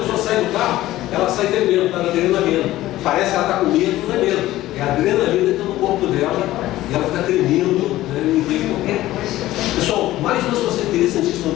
pessoa sai do carro, ela sai tremendo, está na adrenalina. Parece que ela está com medo, não é medo. É a adrenalina que está no corpo dela e ela fica tremendo, Pessoal, mais uma situação interessantíssima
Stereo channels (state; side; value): quieter; right; 15.6 dB